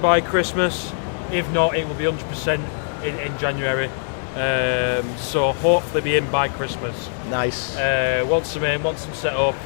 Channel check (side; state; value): right; silent; 64 dB below the other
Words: Christmas. If not, it will be 100% in January. So hopefully be in by Christmas. Once I'm in, once I'm set up,